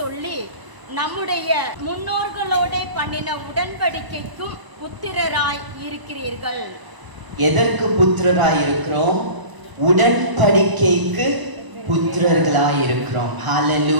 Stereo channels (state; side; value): late; left; 1.0 ms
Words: நம்முடைய முன்னோர்களோட பண்ணின உடன்படிக்கைக்கும் புத்திரராய் இருக்கிறீர்கள். எதற்கு புத்திரராய் இருக்கிறோம்? உடன்படிக்கைக்கு புத்திரர்களாய் இருக்கிறோம்.